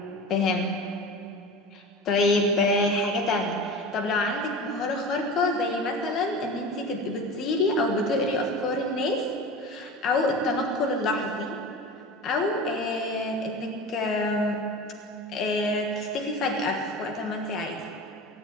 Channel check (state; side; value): normal; both; correlation 0.32